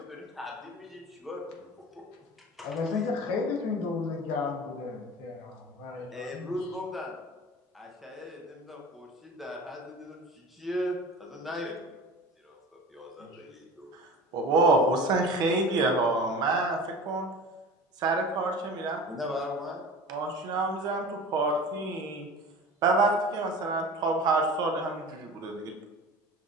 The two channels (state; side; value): normal; both; correlation 0.37